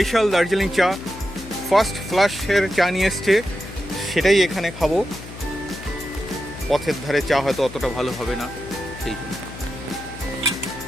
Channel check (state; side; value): noise; left; hum, 14 dB below the sound